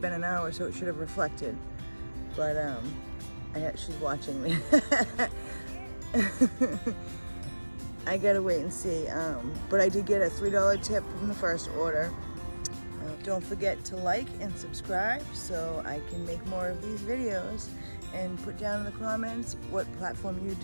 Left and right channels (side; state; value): both; inverted; correlation -1.00